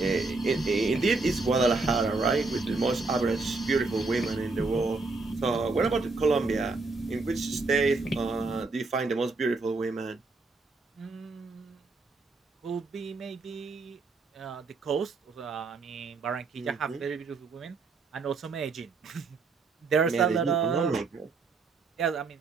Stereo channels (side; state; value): left; quieter; 3.8 dB